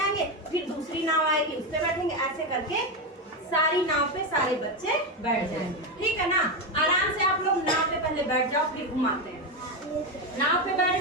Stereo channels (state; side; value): normal; both; correlation 0.11